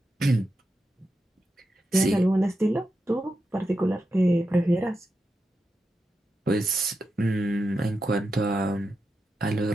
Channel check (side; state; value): both; normal; correlation 0.88